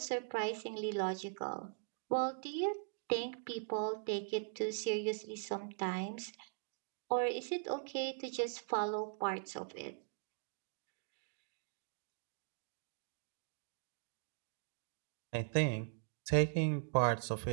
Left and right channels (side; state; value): left; silent; digital silence